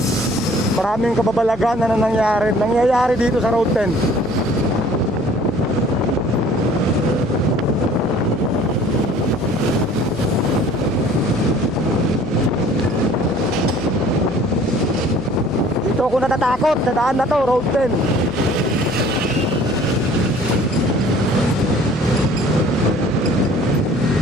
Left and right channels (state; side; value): noise; left; hum, 20 dB below the sound